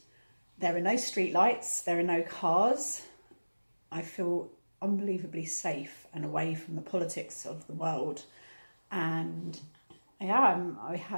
there are no street lights, there are no cars. I feel unbelievably safe and away from the politics of the world. And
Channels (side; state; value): both; inverted; correlation -1.00